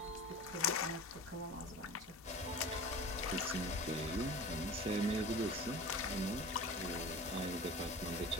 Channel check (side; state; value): both; normal; correlation 0.37